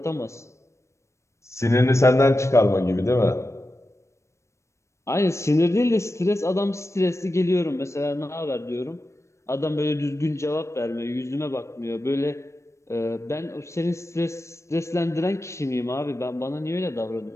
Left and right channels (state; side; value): late; right; 0.14 ms